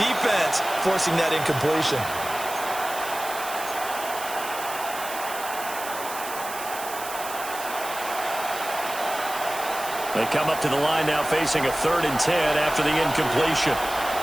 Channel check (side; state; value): right; noise; hiss, 10 dB below the sound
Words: forcing that incompletion? They come up to the line now facing a 3rd and 10 after the incompletion.